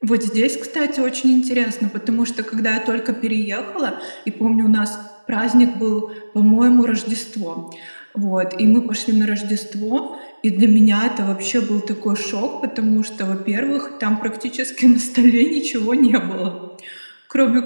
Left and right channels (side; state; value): both; inverted; correlation -1.00